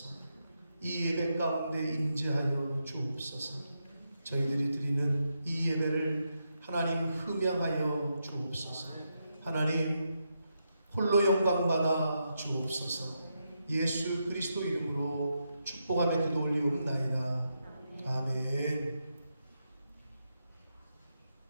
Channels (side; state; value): both; inverted; correlation -0.83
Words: 이 예배 가운데 임재하여 주옵소서. 저희들이 드리는 이 예배를 하나님 흠양하여 주옵소서. 하나님 홀로 영광받아 주옵소서. 예수 그리스도 이름으로 축복하며 기도 올리옵나이다. 아멘.